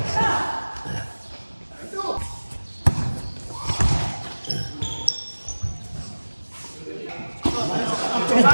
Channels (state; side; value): inverted; both; correlation -1.00